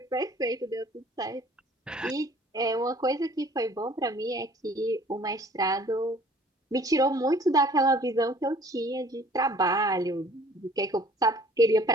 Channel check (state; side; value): normal; both; correlation 0.53